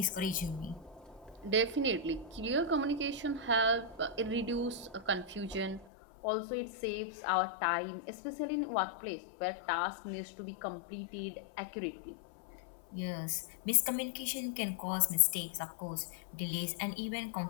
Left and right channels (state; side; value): drops out; right; at 5.9 s